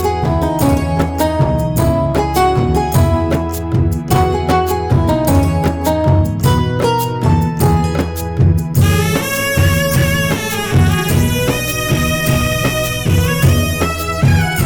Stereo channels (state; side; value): identical; both; correlation 1.00